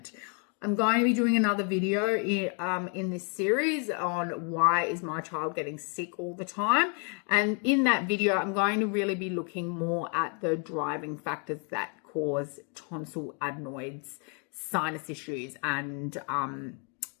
I'm going to be doing another video in this series on why is my child getting sick all the time. And in that video, I'm going to really be looking more at the driving factors that cause tonsil adenoids, sinus issues, and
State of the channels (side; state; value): right; quieter; 38.8 dB